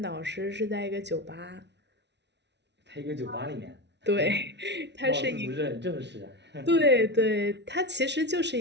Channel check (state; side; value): late; left; 0.50 ms